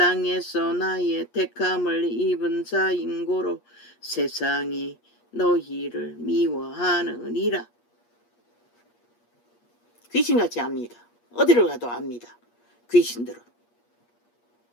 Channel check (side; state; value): right; late; 8.4 ms